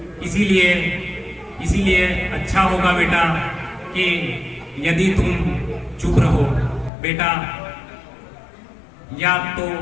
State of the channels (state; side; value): drops out; right; at 6.9 s